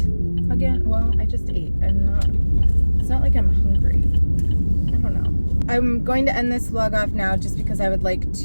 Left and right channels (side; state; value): both; inverted; correlation -1.00